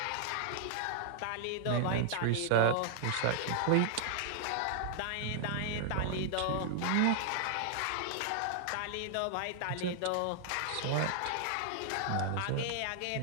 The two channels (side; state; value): both; different; correlation -0.01